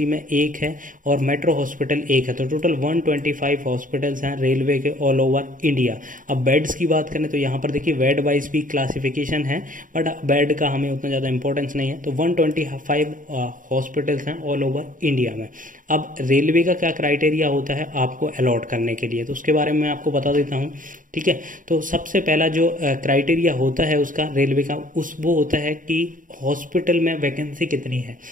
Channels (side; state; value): left; late; 0.39 ms